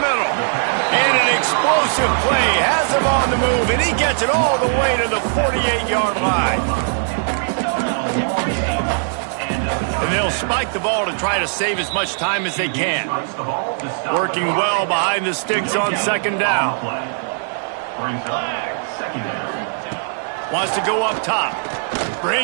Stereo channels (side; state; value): left; silent; 58 dB below the other